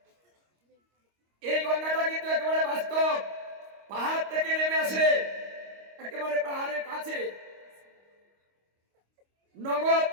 এই গঙ্গাটা কিন্তু একেবারে বাস্তব, পাহাড় থেকে নেমে আসে, একেবারে পাহাড়ের কাছে নগদ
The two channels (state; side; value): late; left; 25 ms